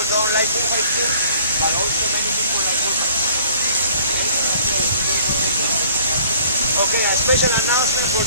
don't like bullfights too, but also many people like bullfights. Okay, a special announcement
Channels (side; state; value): both; inverted; correlation -0.54